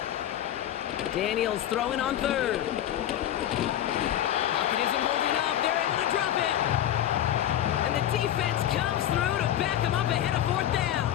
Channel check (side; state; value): right; quieter; 11.5 dB